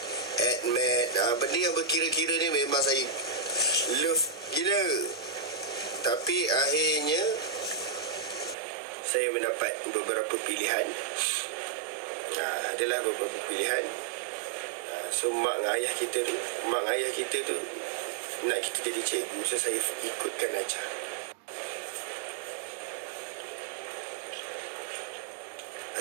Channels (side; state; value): left; drops out; at 8.6 s